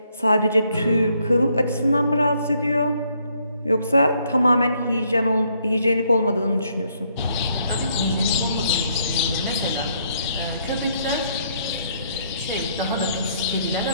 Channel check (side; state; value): both; inverted; correlation -0.71